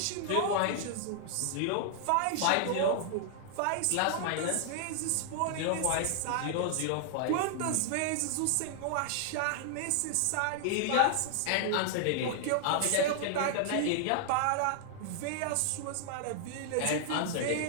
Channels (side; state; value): both; different; correlation -0.01